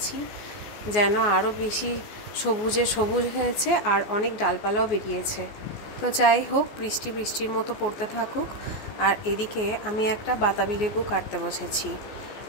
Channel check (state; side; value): late; right; 14 ms